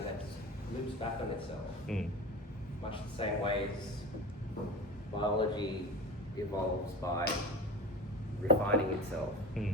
that loops back on itself, much the same way as biology evolves by refining itself.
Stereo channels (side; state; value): both; normal; correlation 0.32